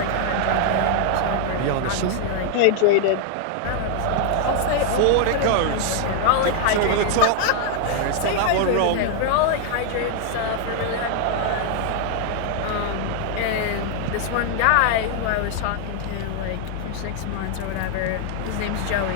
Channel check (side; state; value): both; different; correlation 0.00